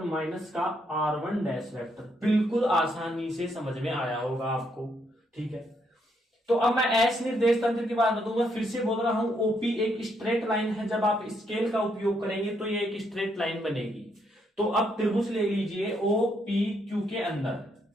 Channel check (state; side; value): normal; both; correlation 0.75